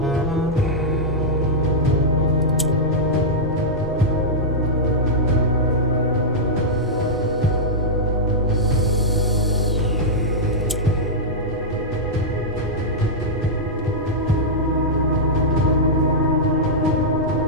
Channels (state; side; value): normal; both; correlation -0.09